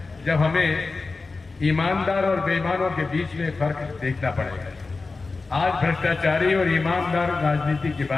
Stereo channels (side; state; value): right; quieter; 3.9 dB